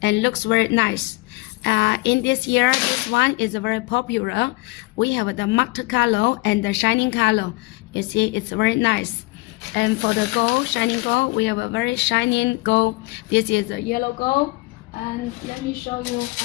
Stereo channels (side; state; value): right; quieter; 23.5 dB